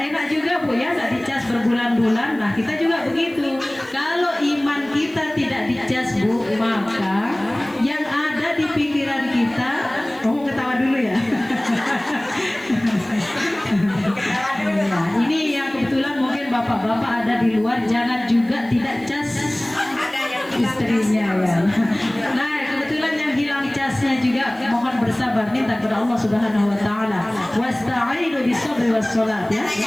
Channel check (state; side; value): noise; right; hiss, 27 dB below the sound